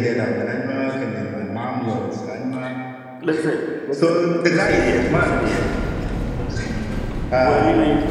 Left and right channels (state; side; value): identical; both; correlation 1.00